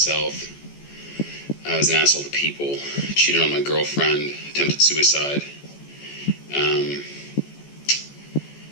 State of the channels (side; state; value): right; late; 14 ms